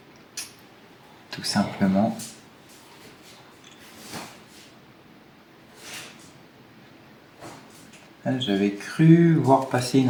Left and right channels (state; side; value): identical; both; correlation 1.00